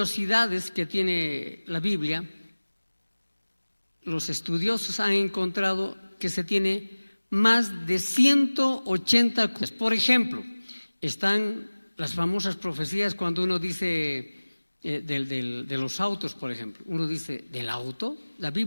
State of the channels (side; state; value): both; inverted; correlation -1.00